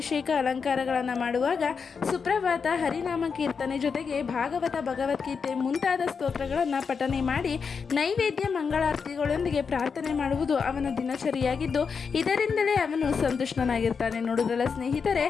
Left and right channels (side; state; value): right; quieter; 5.8 dB